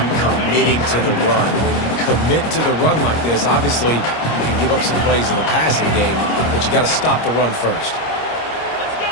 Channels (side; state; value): right; late; 25 ms